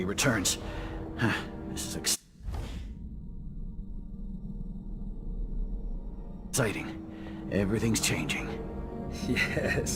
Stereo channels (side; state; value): both; identical; correlation 1.00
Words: returns. This is exciting. Everything's changing.